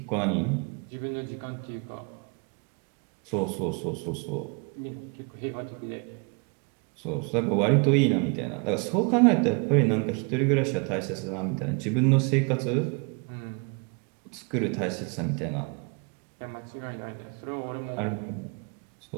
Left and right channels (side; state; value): left; quieter; 33.9 dB